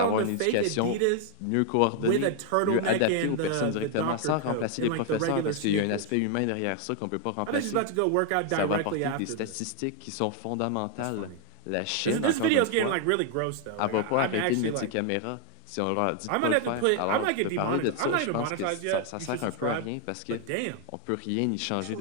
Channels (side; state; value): both; different; correlation 0.00